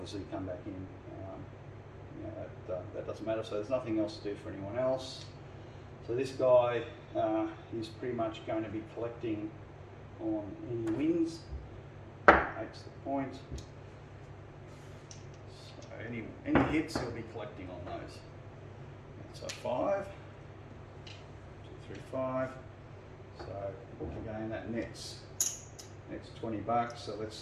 come back in. That doesn't matter, so there's nothing else to do for anyone else. So this guy is pretty much going to be collecting on any wins. 8's the point. So any hits he'll be collecting on those. So 5. 5. So again, that nets 20 bucks. So let's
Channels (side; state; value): both; identical; correlation 1.00